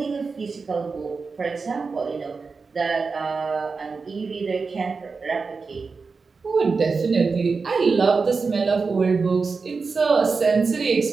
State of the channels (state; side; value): quieter; left; 4.6 dB